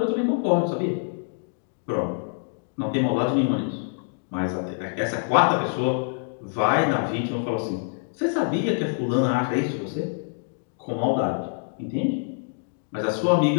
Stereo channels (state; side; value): silent; right; digital silence